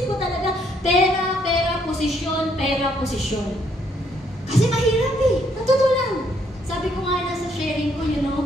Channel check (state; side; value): normal; both; correlation 0.70